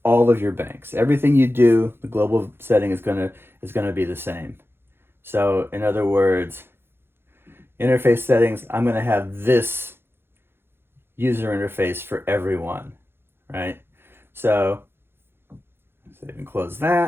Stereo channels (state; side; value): late; left; 0.11 ms